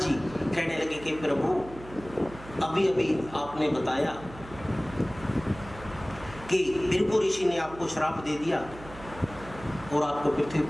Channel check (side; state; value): right; noise; hum, 16 dB below the sound